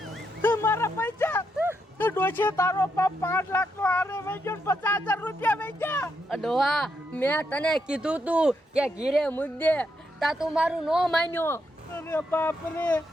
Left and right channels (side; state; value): both; normal; correlation 0.80